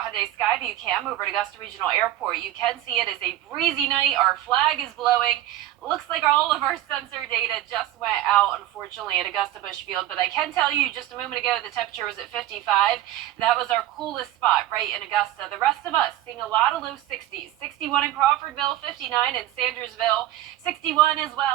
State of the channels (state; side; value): quieter; left; 14.1 dB